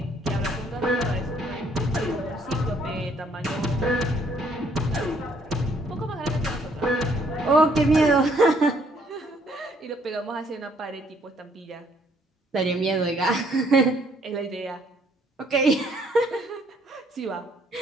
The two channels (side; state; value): both; normal; correlation 0.65